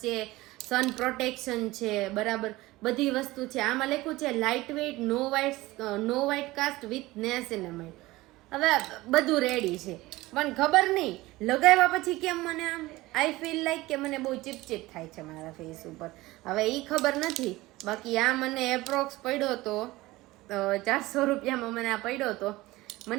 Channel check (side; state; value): left; quieter; 19.2 dB